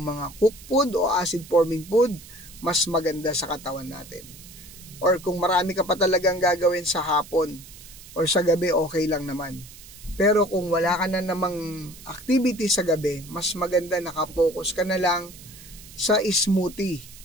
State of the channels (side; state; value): right; noise; hiss, 18 dB below the sound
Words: mga cooked food o acid forming food, mas maganda sa katawan natin. Or kung marami ka pa talagang gagawin sa hapon or sa gabi, okay lang naman. Pero kung wala ka na namang activity sa gabi, mas maganda nakapokus ka na lang sa smoothie.